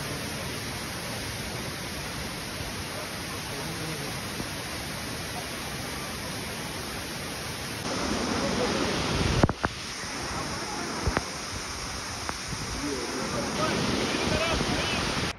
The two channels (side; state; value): both; identical; correlation 1.00